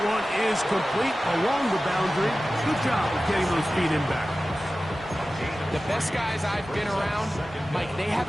one is complete along the boundary. Good job of getting those feet in back. The best guys I've been around, Mike, they have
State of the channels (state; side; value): normal; both; correlation 0.95